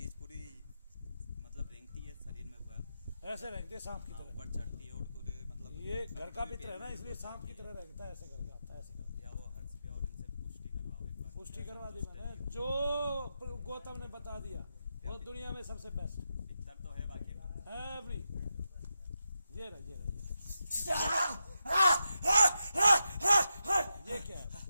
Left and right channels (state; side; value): inverted; both; correlation -0.88